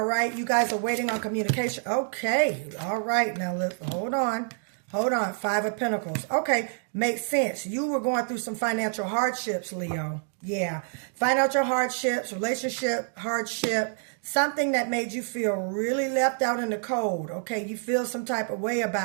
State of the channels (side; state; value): left; silent; 60 dB below the other